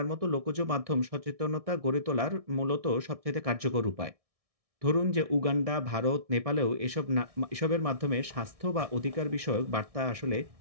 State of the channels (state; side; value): late; left; 1.6 ms